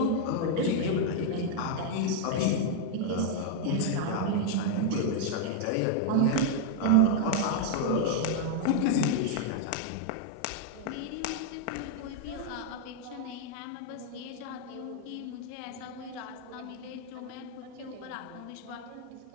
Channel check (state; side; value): different; both; correlation 0.00